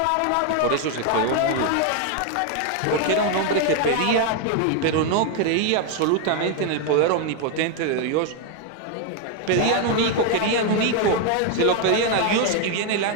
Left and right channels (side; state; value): both; different; correlation 0.01